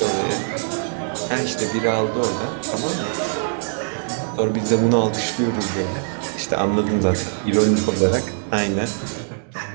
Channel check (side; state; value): left; silent; digital silence